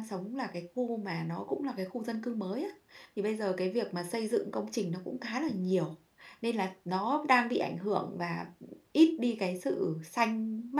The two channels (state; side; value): identical; both; correlation 1.00